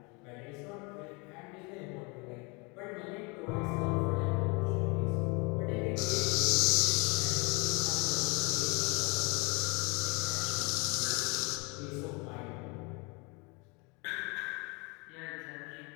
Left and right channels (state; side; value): quieter; right; 29.3 dB